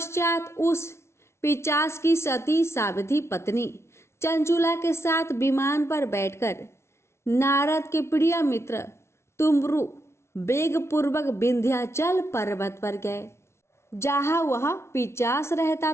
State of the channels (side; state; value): right; late; 0.13 ms